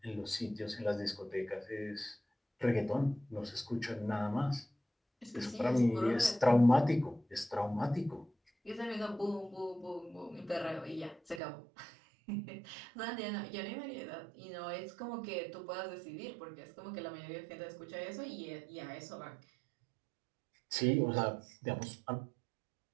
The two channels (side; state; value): left; drops out; at 11.4 s